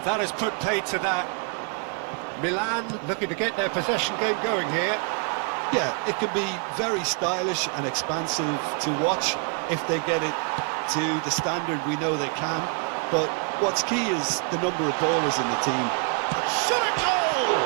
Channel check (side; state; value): left; quieter; 39.4 dB